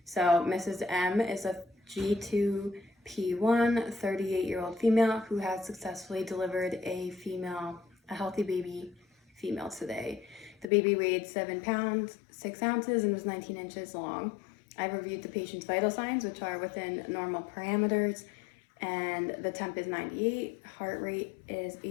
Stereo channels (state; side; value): drops out; right; at 10.7 s